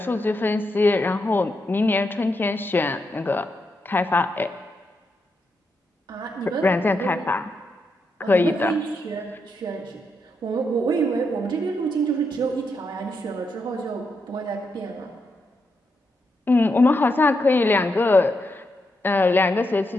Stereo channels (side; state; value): both; normal; correlation 0.83